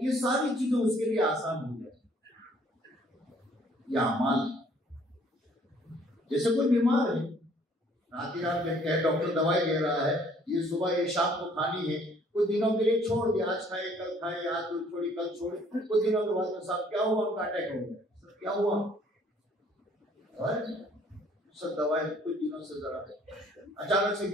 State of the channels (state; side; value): normal; both; correlation 0.60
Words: ये सारी चीजें उसके लिए आसान हो जाए। ये अमाल, जैसे कोई बीमार है, रात में कहे डॉक्टर दवाई दे रहा है, ये सुबह ये शाम को खानी है, कुछ दिनों के लिए छोड़ दिया, आज खाए कल खाए, आज छोड़ी कल छोड़ी, कुछ दिनों के बाद में साहब क्या हुआ, उनका अटैक हो गया, क्या हुआ, सब दवाई कुछ दिनों से जरा अचानक से